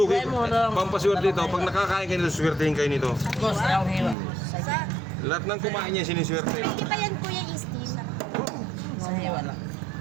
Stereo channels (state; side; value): drops out; left; at 4.2 s